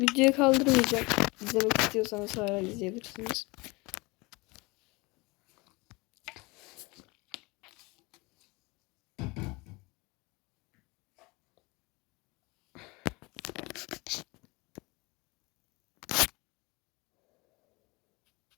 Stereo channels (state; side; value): quieter; right; 25.1 dB